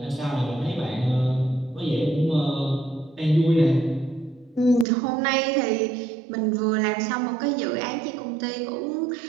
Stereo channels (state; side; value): drops out; left; at 4.9 s